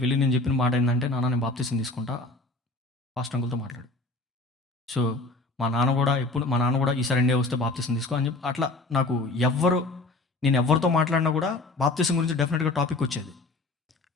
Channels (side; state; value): right; quieter; 3.0 dB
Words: నేను చెప్పిన మాట ఏంటంటే, నాన్న నేను బాప్తీసం తీసుకుంటా, పాస్టర్ అంకుల్తో మాట్లాడు. సో మా నాన్న కూడా ఈసారి ఇండియా వస్తే బాప్తీసం తీసుకో అని చెప్పి అట్లా నాకు నేను ఎవరితో మాట్లాడినా కూడా బాప్తీసం గురించి డెఫినెట్గా టాపిక్ వచ్చేది.